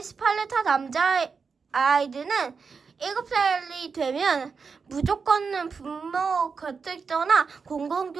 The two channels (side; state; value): left; quieter; 5.3 dB